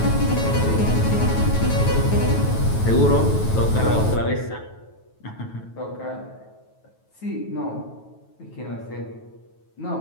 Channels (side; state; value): right; late; 9.2 ms